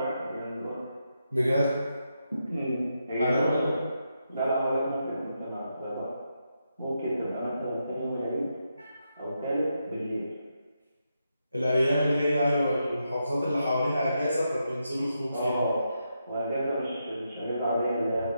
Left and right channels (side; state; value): both; inverted; correlation -0.84